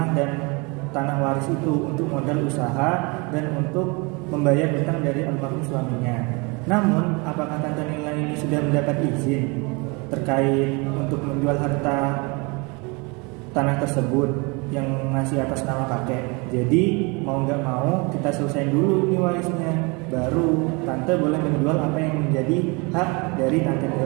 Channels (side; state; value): left; quieter; 29.0 dB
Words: dan tanah waris itu untuk modal usaha dan untuk membayar hutang dari almarhum suaminya. Namun, apakah Tante Nila ini sudah mendapat izin terkait untuk menjual harta tanah tersebut yang masih atas nama kakek? Jadi mau nggak mau kita selesaiin dulu nih warisnya, baru Tante boleh menjual apa yang menjadi hak dari Tante